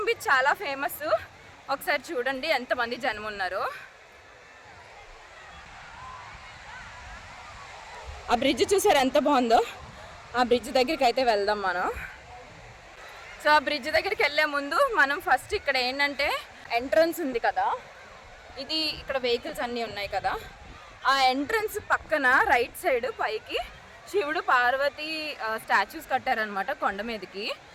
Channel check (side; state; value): both; identical; correlation 1.00